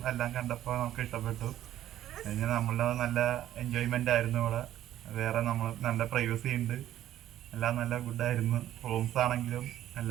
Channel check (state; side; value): quieter; left; 12.5 dB